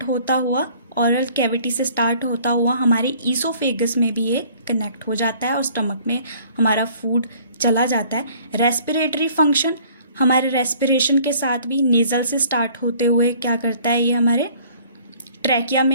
होता हुआ, ओरल कैविटी से स्टार्ट होता हुआ हमारे ईसोफेगस में भी ये कनेक्ट हो जाता है और स्टमक में हमारा फूड चला जाता है। रेस्पिरेटरी फंक्शन, हमारे रेस्पिरेशन के साथ भी नेज़ल से स्टार्ट होते हुए क्या करता है, ये हमारे ट्रैकिया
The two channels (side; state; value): both; inverted; correlation -0.55